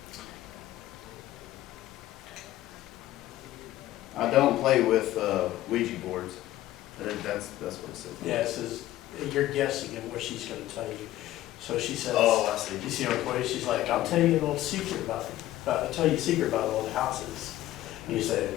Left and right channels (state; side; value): quieter; right; 14.9 dB